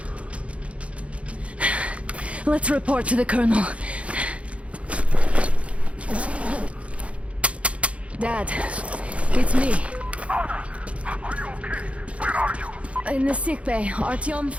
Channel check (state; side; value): late; left; 0.063 ms